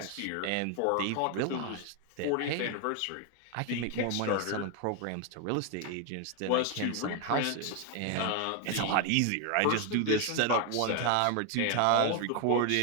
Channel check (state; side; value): different; both; correlation 0.01